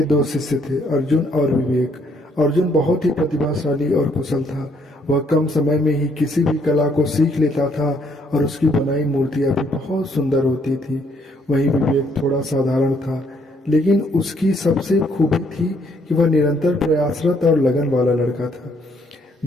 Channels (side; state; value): both; normal; correlation 0.69